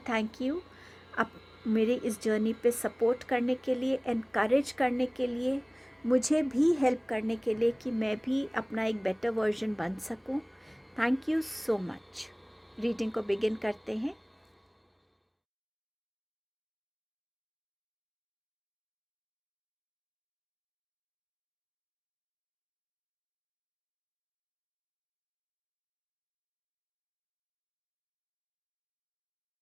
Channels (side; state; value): both; identical; correlation 1.00